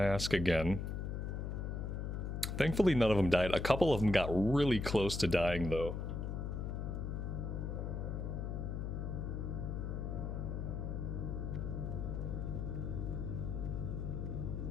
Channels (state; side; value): noise; left; hum, 3 dB below the sound